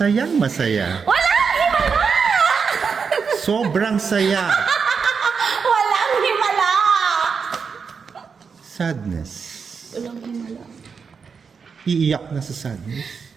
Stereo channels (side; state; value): left; quieter; 5.8 dB